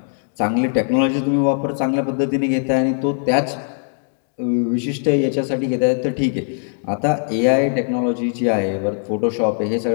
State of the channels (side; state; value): right; silent; digital silence